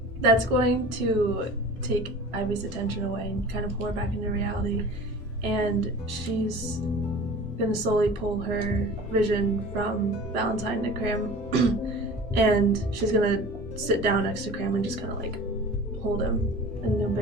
That's going to take Ivy's attention away and kind of pull her back into reality, and she's gonna slowly pull her vision from Valentine to Cram, and she's gonna sit down next to Cram and just kind of like hold him in a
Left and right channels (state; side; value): normal; both; correlation 0.40